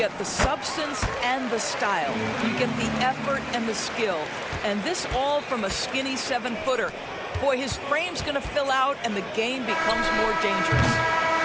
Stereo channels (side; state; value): both; identical; correlation 1.00